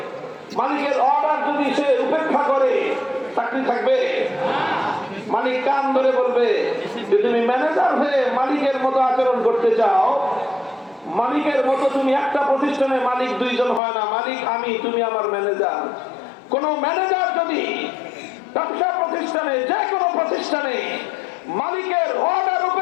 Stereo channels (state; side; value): drops out; right; at 13.8 s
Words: মালিকের অর্ডার যদি সে উপেক্ষা করে, চাকরি থাকবে? মালিক কান ধরে বলবে যে তুমি ম্যানেজার হয়ে মালিকের মতো আচরণ করতে চাও, মালিকের মতো তুমি একটা প্রতিষ্ঠানে মালিক দুইজন হয় না, মালিক আমি, তুমি আমার ম্যানেজার। কোন ম্যানেজার যদি ব্যবসা প্রতিষ্ঠানে, যে কোনো প্রতিষ্ঠানে মালিকের অর্ডার